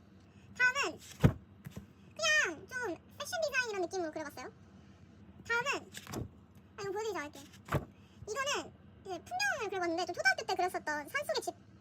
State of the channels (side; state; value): both; identical; correlation 1.00